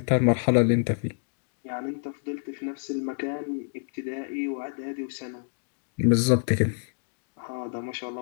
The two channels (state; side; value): silent; right; digital silence